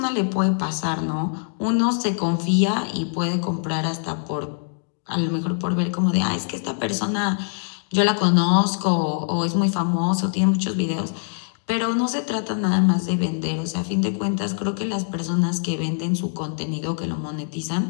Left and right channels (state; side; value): silent; right; digital silence